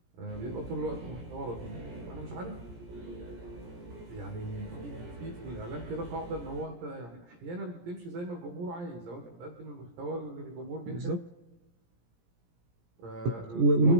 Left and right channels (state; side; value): late; left; 17 ms